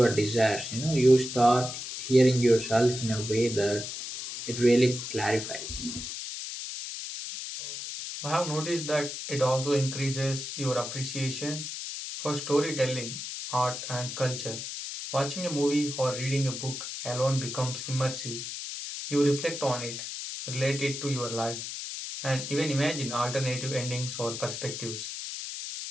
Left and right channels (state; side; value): noise; left; hiss, 7 dB below the sound